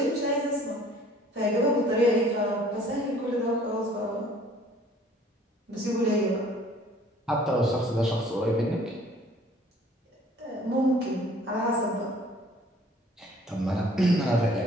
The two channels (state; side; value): normal; both; correlation 0.54